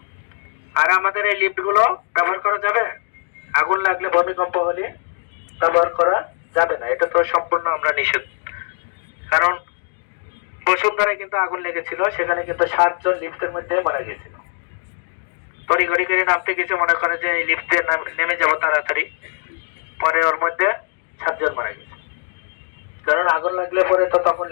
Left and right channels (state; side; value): silent; right; 58 dB below the other